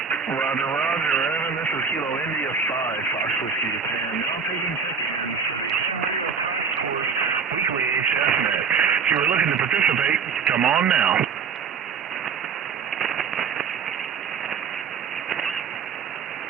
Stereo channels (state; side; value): quieter; left; 6.1 dB